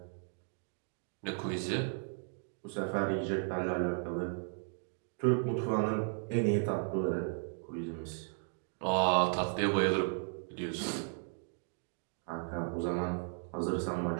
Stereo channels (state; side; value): silent; left; 54 dB below the other